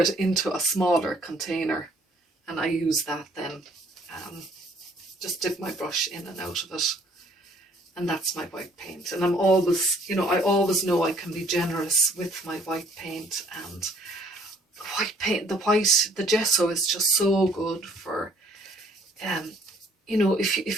into a smaller container, and I use that then. Just dip my brush in and out of it, and that's my white paint. And I'm always, you know, I always know I can be generous with my white paint. And white paint, the gesso is just so good for, you know,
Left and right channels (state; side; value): normal; both; correlation 0.60